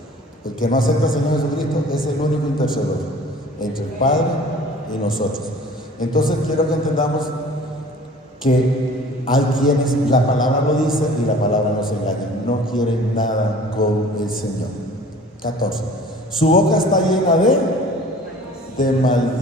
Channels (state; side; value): normal; both; correlation 0.47